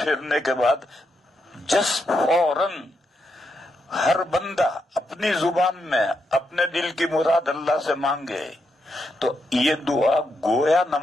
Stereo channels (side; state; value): both; normal; correlation 0.82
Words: کے بعد فوراً ہر بندہ اپنی زبان میں اپنے دل کی مراد اللہ سے مانگے، تو یہ دعا گویا